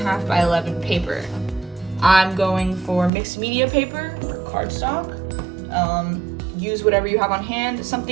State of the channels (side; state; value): left; drops out; at 3.1 s